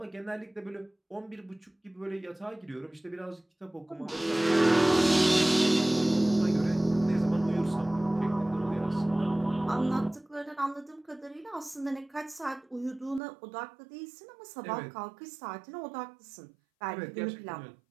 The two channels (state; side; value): drops out; left; at 13.2 s